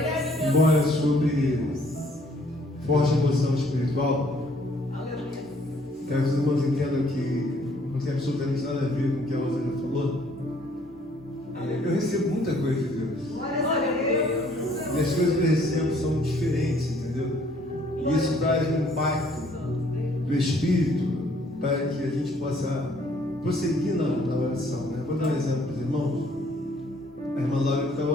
Embora sobre forte emoção espiritual, Aleluia. quero que os irmãos entendam que não tem absolutamente nada a ver com o que a Rosana falou. Eu recebo muita coisa de Deus. Glória a Deus. E as coisas que eu recebo são diferentes, entendeu? E isso traz um impacto do Espírito para que a gente possa prosseguir na oração, né? Vou dar um exemplo para os irmãos. A irmã Laura está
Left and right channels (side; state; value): both; normal; correlation 0.62